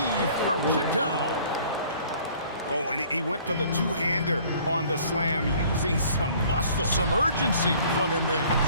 throws it down. Oh, and he went for the two-hander on the slam using some muscle. Some urgency from him there.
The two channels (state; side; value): inverted; both; correlation -0.54